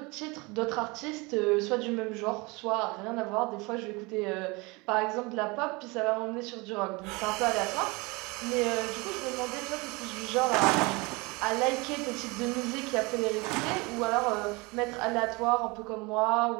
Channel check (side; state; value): left; quieter; 25.9 dB